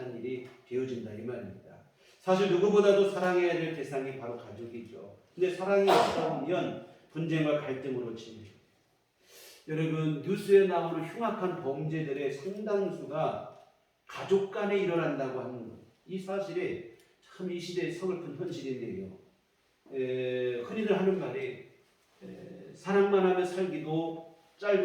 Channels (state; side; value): identical; both; correlation 1.00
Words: 일이 되어진다 이 말입니다. 사실 누구보다도 사랑해야 될 대상이 바로 가족이죠. 근데 사랑이 없다 보면 분쟁과 갈등으로 치밀어요. 여러분, 뉴스에 나오는 흉악한 범죄들의 상당수가 가족 간에 일어난다고 하는 것, 이 사실이 참 이 시대의 서글픈 현실인데요. 흔히들 하는 말이 사랑만 하며 살기도